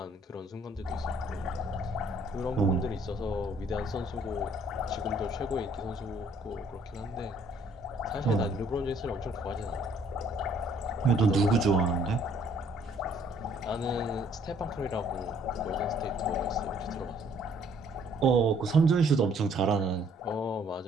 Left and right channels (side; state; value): both; normal; correlation 0.62